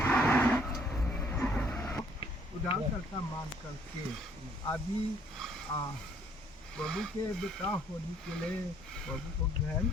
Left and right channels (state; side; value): normal; both; correlation 0.63